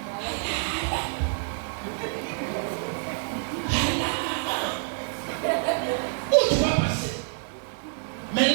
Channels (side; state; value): left; silent; 60 dB below the other